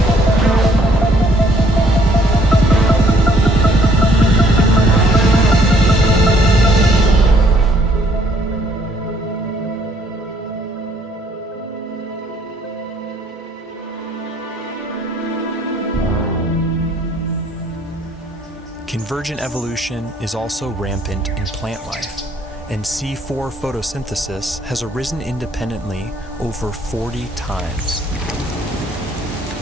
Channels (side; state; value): both; normal; correlation 0.64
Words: Convergent evolution is also rampant in plant life, and C4 photosynthesis has arisen independently over 40 times.